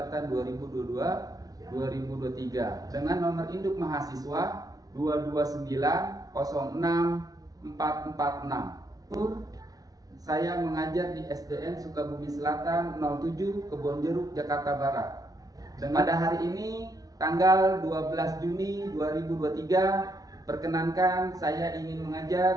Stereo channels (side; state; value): left; late; 0.18 ms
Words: 2022-2023 dengan nomor induk mahasiswa 229064446. Saya mengajar di SDN Sukabumi Selatan 07 Kebonjeruk, Jakarta Barat. Dan pada hari ini tanggal 12 Juni 2023, perkenankan saya ingin